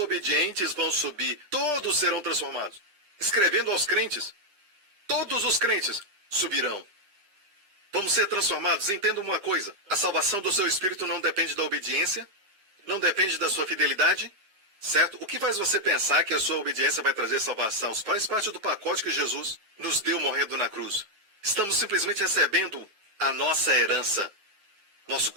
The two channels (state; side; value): late; left; 9.3 ms